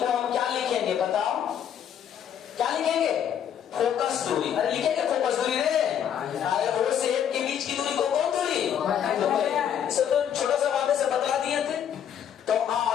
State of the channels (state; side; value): quieter; right; 9.2 dB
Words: हम क्या लिखेंगे? बताओ क्या लिखेंगे? फोकस दूरी। अरे लिखेंगे फोकस दूरी रे। अरे O से F के बीच की दूरी को कौन दूरी? तो छोटा सा बात से बतला दिए थे। तो